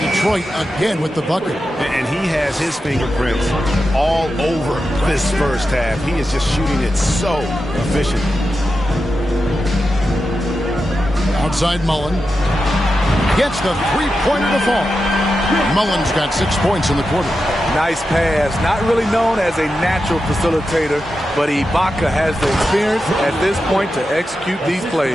Detroit again with the bucket. And he has his fingerprints all over this first half. He is just shooting it so efficient. Outside Mullen. Gets the three-pointer to fall. Mullen's got 6 points in the quarter. Nice pass. Not really known as a natural facilitator, but Ibaka has the experience at this point to execute these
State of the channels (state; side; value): normal; both; correlation 0.90